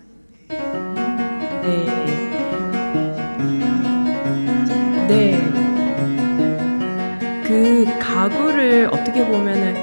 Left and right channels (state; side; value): inverted; both; correlation -1.00